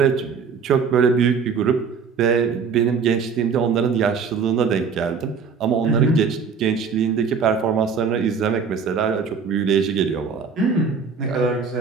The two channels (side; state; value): left; quieter; 5.8 dB